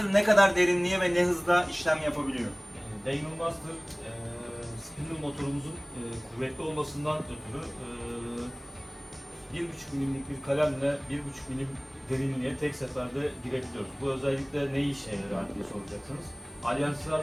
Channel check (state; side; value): identical; both; correlation 1.00